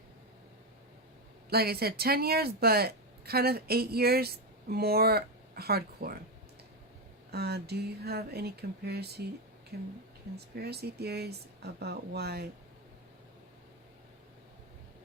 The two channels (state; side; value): normal; both; correlation 0.09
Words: Like I said, 10 years, but kind of 8 years more hardcore. Do you have any conspiracy theories about why